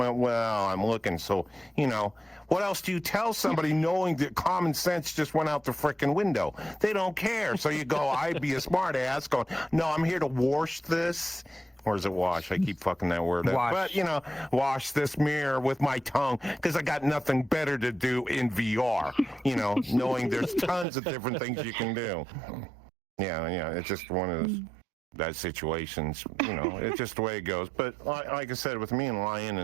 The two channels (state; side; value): drops out; left; at 20.9 s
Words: looking. So, you know, what else do you tell somebody knowing that common sense just went out the frickin' window? They don't care. So you go, I'd be a smart ass going, no, I'm here to wash this. Or is it wash? I keep fucking that word up. But, you know, wash this mirror with my tongue because I got nothing better to do in VR, you know, knowing there's tons of different things you can do. Yeah, it's just one of those. That situations, you know, it's just the way it goes. But like I said, with me and Lion